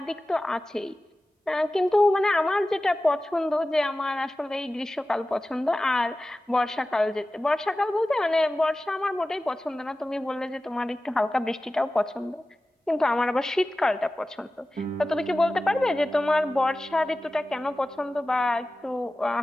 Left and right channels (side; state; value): both; normal; correlation 0.95